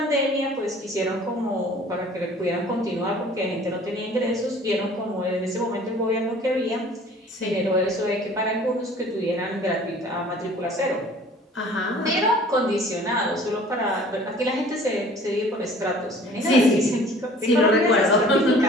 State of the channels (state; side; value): normal; both; correlation 0.49